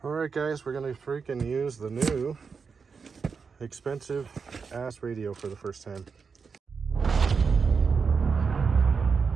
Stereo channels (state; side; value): quieter; left; 5.4 dB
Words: Alright guys, we're gonna freaking use the new expensive ass radio for the first time.